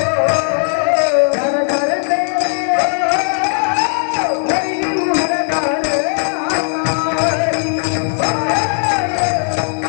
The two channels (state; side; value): silent; right; 69 dB below the other